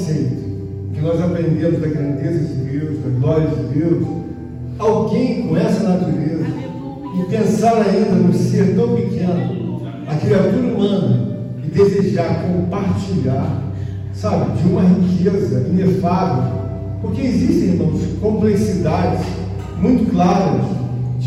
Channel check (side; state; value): both; identical; correlation 1.00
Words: que nós aprendemos da grandeza de Deus, da glória de Deus, alguém com essa natureza, e pensar ainda num ser tão pequeno, a criatura humana, e desejar compartilhar, sabe, de uma riqueza inefável, porque existem, irmãos, complexidades muito claras